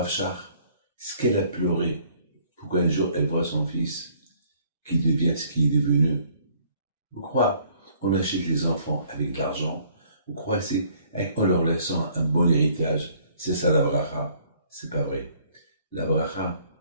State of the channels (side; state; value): both; inverted; correlation -0.60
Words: Shach, ce qu'elle a pleuré, pour qu'un jour elle voit son fils qui devient ce qu'il est devenu. Vous croyez, on achète les enfants avec de l'argent, vous croyez, c'est en leur laissant un bon héritage, c'est ça la bracha? C'est pas vrai. La bracha,